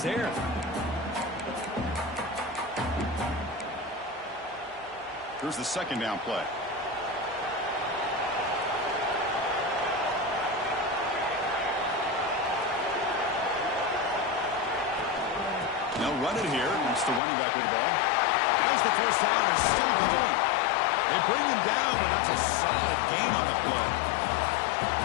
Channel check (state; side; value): drops out; right; at 17.2 s